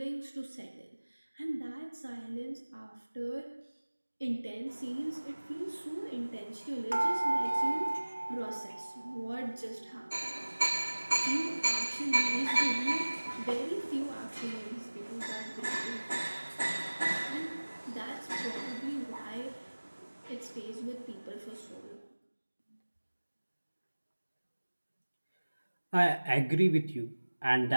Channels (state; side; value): inverted; both; correlation -1.00